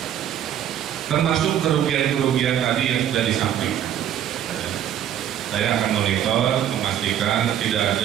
termasuk kerugian-kerugian tadi yang sudah disampaikan. Saya akan monitor, memastikan tidak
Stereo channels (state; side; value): quieter; left; 10.4 dB